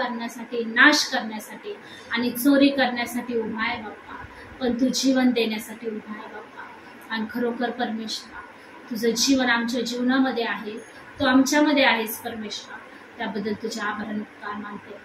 नाश करण्यासाठी आणि चोरी करण्यासाठी उभा आहे बाप्पा, पण तू जीवन देण्यासाठी उभा आहे बाप्पा. आणि खरोखर परमेश्वरा, तुझं जीवन आमच्या जीवनामध्ये आहे, तू आमच्यामध्ये आहेस परमेश्वरा. त्याबद्दल तुझे आभार आणि उपकार मानते.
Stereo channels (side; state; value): both; identical; correlation 1.00